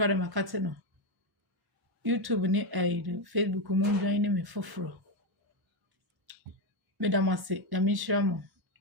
makate no. YouTube ni Facebook mo join me foforo. Me da mase, da me share mo.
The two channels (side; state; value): left; late; 1.1 ms